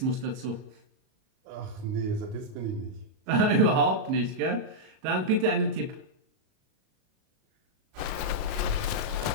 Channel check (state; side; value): late; left; 37 ms